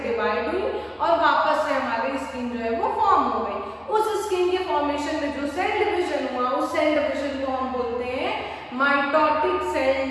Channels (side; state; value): both; identical; correlation 1.00